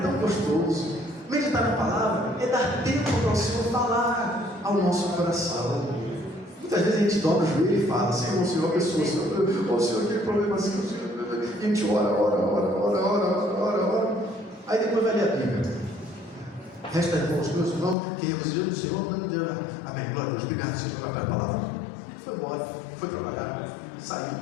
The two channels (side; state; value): right; drops out; at 17.9 s